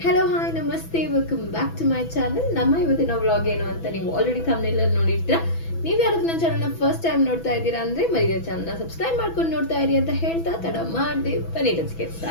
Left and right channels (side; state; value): right; late; 6.1 ms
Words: ಹಲೋ ಹಾಯ್ ನಮಸ್ತೆ, welcome back to my channel. ನಮ್ಮ ಇವತ್ತಿನ ವ್ಲಾಗ್ ಏನು ಅಂತ ನೀವು ಆಲ್ರೆಡಿ ಥಂಬ್ನೇಲ್ ಅಲ್ಲಿ ನೋಡಿರ್ತೀರಾ. ನೀವು ಯಾರಾದ್ರೂ ನನ್ನ ಚಾನಲ್ನ ಫಸ್ಟ್ ಟೈಮ್ ನೋಡ್ತಾ ಇದ್ದೀರಾ ಅಂದ್ರೆ ಮರಿದ ಚಾನಲ್ನ ಸಬ್ಸ್ಕ್ರೈಬ್ ಮಾಡ್ಕೊಂಡು ನೋಡ್ತಾ ಇರಿ ಅಂತ ಹೇಳ್ತಾ ತಡ ಮಾಡದೆ ಬನ್ನಿ ಲೆಟ್ಸ್ ಗೆಟ್